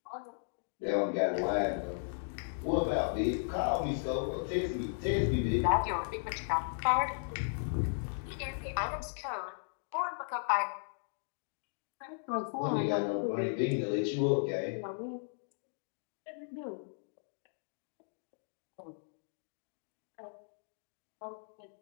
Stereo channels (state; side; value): silent; right; digital silence